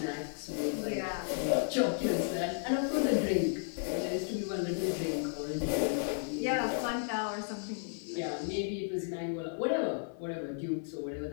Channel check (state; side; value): silent; right; digital silence